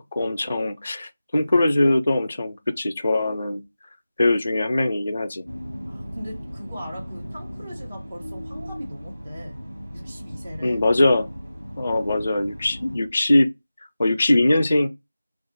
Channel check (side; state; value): both; inverted; correlation -0.95